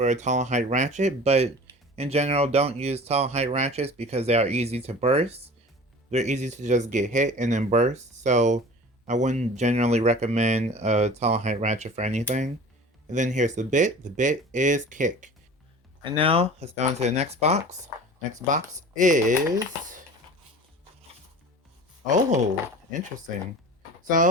a tall height ratchet, but in general, don't use tall height ratchets because they are easy to burst. They're easy to just get hit and then burst, so I wouldn't generally recommend a tall height ratchet for anything. And then here's the bit. The bit is kick. And now, let's go into the next box. Next box is... oh, interesting.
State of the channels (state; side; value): normal; both; correlation 0.40